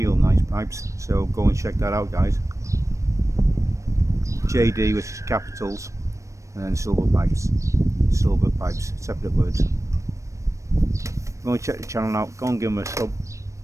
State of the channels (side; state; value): left; late; 0.15 ms